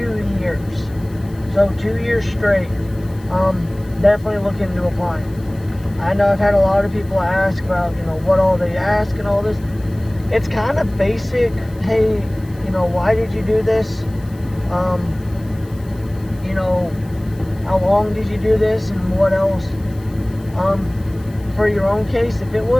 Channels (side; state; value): left; noise; hiss, 26 dB below the sound